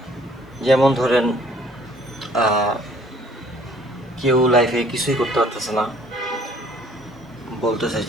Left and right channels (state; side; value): normal; both; correlation 0.58